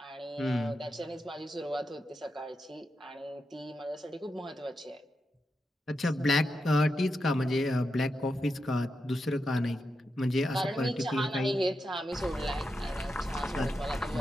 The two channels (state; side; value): normal; both; correlation 0.87